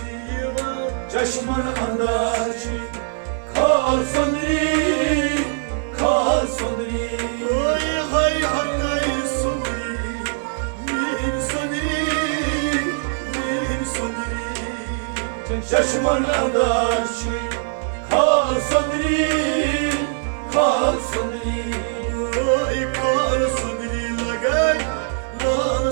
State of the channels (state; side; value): silent; left; digital silence